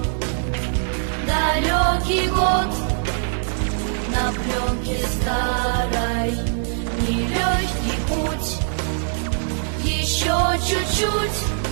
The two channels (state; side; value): silent; left; 55 dB below the other